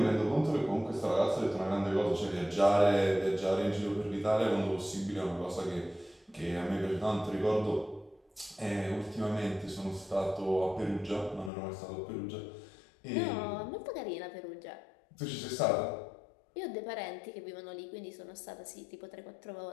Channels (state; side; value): drops out; right; at 11.5 s